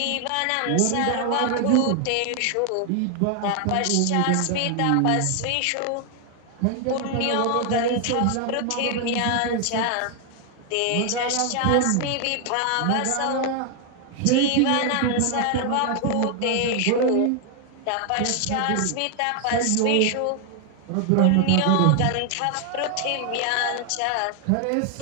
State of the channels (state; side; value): different; both; correlation 0.00